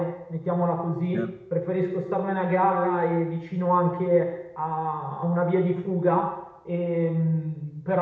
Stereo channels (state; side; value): identical; both; correlation 1.00